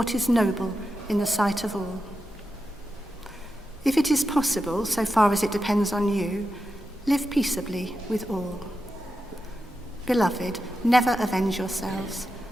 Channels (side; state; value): both; normal; correlation 0.89